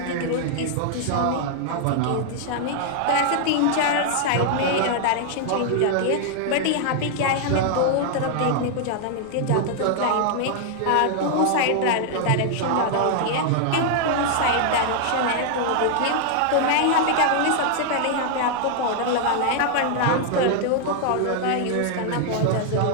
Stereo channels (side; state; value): both; different; correlation 0.00